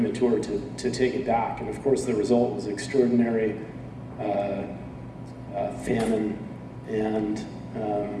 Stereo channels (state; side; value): identical; both; correlation 1.00